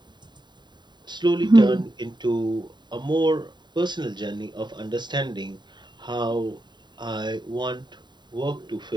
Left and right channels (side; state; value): left; late; 0.22 ms